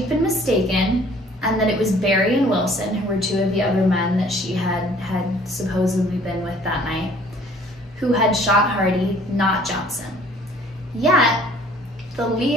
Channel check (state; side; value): normal; both; correlation 0.55